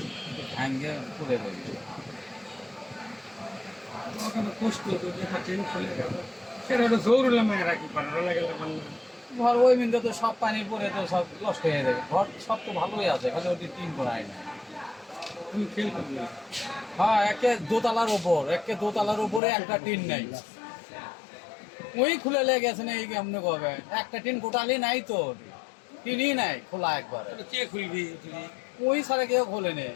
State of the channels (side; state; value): right; drops out; at 19.4 s